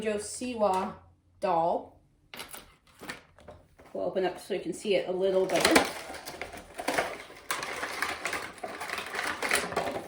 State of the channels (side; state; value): both; identical; correlation 1.00